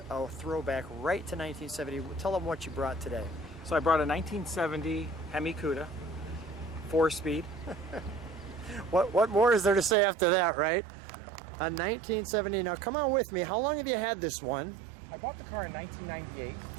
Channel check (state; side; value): drops out; left; at 10.0 s